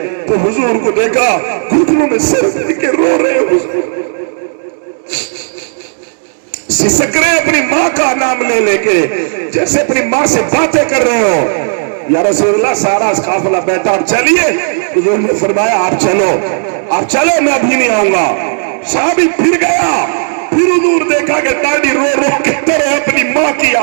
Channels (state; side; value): silent; left; digital silence